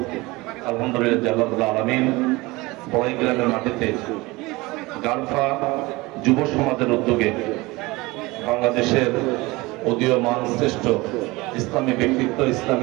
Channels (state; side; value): quieter; left; 22.3 dB